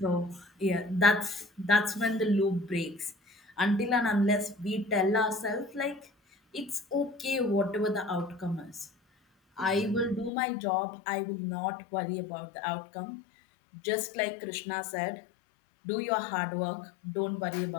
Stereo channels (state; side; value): drops out; right; at 10.3 s